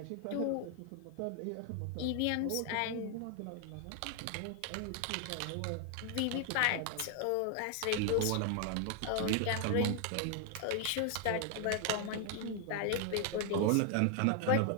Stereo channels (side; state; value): both; different; correlation 0.00